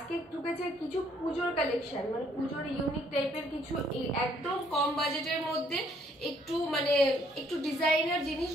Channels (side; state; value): both; normal; correlation 0.66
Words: ঢুকেছে কিছু পুজোর কালেকশন, পুজোর ইউনিক টাইপের কিছু একদম কম বাজেটের মধ্যে একটু ডিজাইনার জিনিস